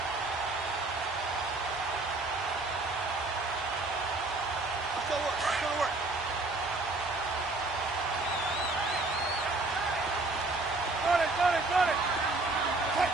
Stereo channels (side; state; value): left; quieter; 3.2 dB